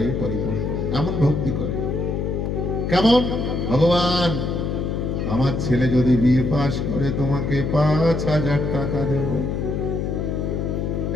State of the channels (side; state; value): left; noise; hum, 1 dB below the sound